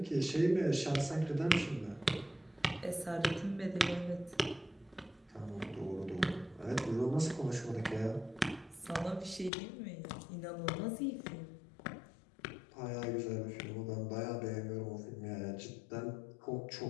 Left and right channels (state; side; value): drops out; right; at 9.5 s